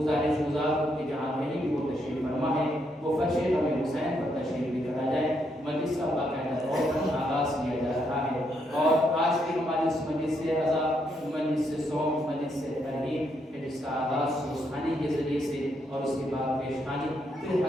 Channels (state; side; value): normal; both; correlation 0.77